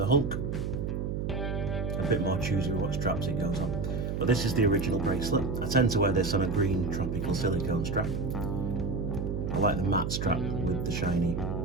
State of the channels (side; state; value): right; noise; hum, 2 dB below the sound